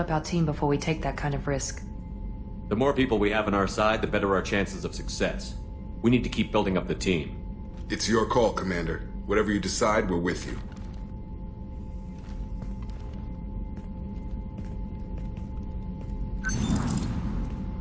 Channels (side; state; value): both; identical; correlation 1.00